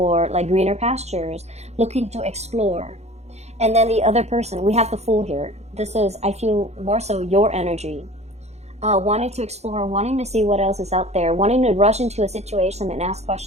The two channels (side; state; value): left; late; 0.32 ms